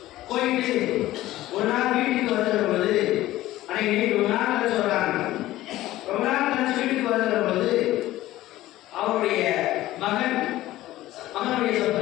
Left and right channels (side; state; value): right; quieter; 15.7 dB